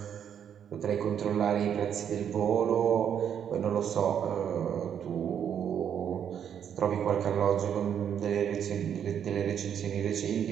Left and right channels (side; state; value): left; quieter; 8.7 dB